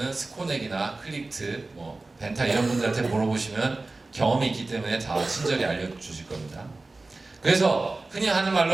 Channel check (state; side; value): quieter; left; 3.3 dB